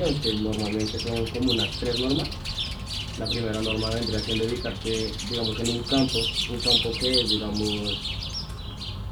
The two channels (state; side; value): identical; both; correlation 1.00